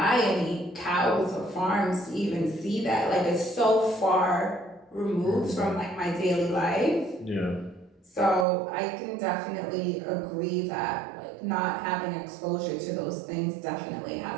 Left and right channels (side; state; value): left; drops out; at 8.5 s